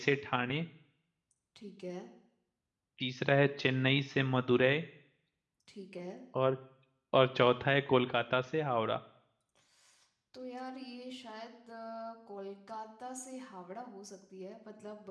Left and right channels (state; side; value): identical; both; correlation 1.00